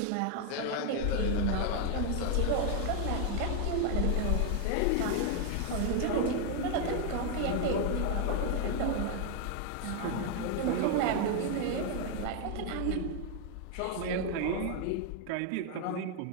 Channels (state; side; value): different; both; correlation 0.01